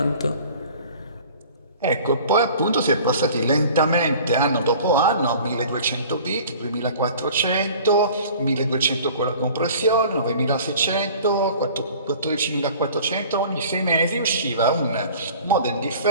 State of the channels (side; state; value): both; inverted; correlation -0.46